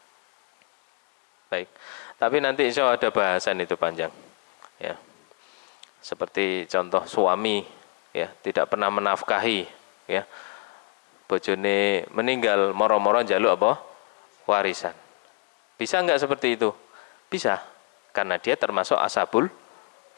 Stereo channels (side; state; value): right; quieter; 30.7 dB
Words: Baik, tapi nanti insya Allah ada bahasan itu panjang, ya. Seperti contoh suami, ya, tidak pernah menafkahi, ya, bojone meninggal, moro-moro njaluk apa? Warisan. Bisa nggak seperti itu? Bisa, karena dia termasuk ashabul